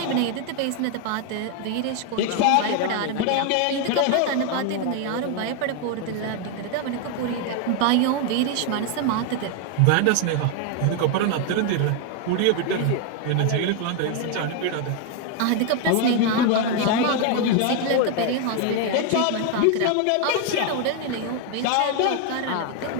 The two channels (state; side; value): different; both; correlation 0.01